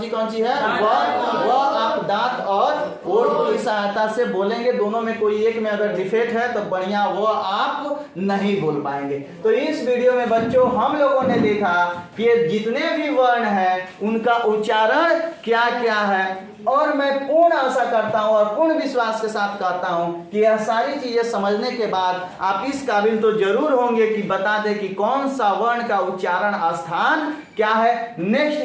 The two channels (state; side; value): identical; both; correlation 1.00